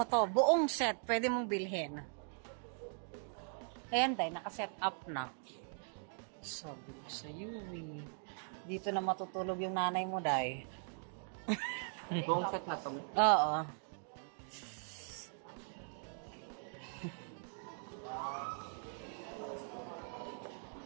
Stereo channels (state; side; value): silent; left; 51 dB below the other